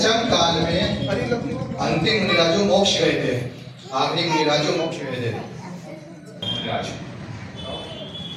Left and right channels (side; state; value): both; identical; correlation 1.00